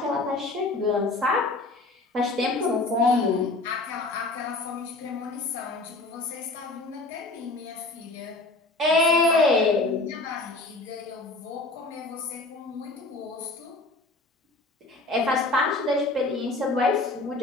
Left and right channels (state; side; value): quieter; right; 3.0 dB